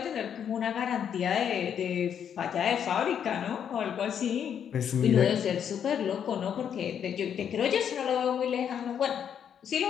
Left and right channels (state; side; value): quieter; right; 8.5 dB